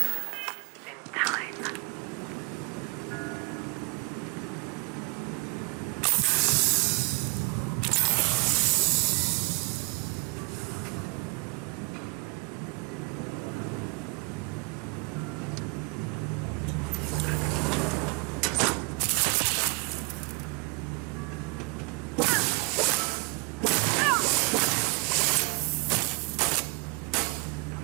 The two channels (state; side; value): quieter; left; 29.9 dB